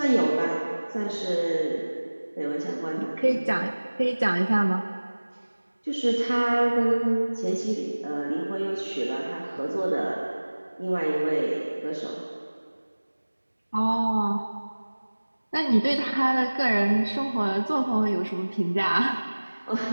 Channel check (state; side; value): inverted; both; correlation -1.00